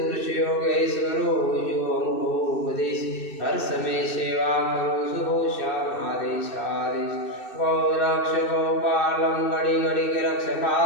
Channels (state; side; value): late; right; 2.6 ms